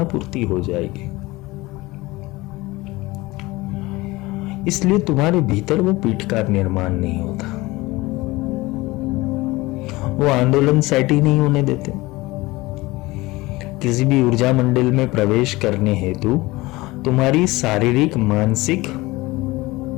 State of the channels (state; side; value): quieter; right; 20.8 dB